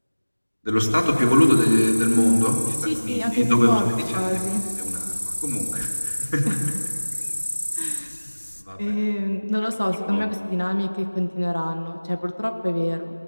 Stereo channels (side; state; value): both; inverted; correlation -1.00